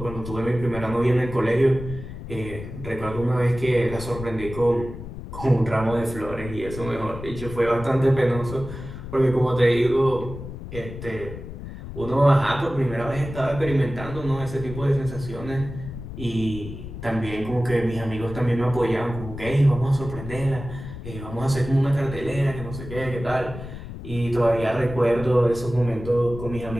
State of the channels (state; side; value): noise; left; rumble, 11 dB below the sound